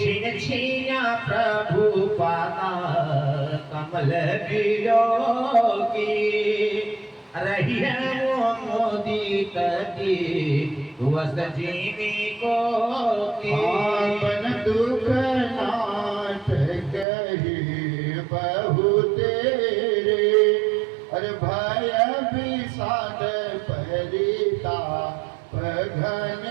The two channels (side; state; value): left; drops out; at 17.1 s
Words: छिना प्रभु पाता कमल बिलो की रही है वो मोदी की वस्त जीवी को की आपन दुख नाथ कही बहु तेरे अरे भय विषाद परिता